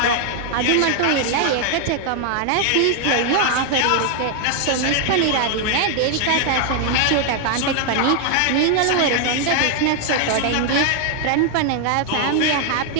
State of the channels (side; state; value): both; different; correlation 0.00